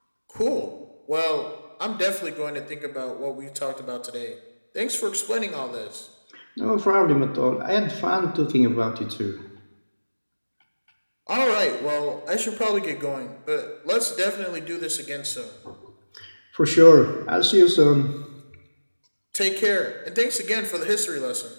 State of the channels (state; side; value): inverted; both; correlation -1.00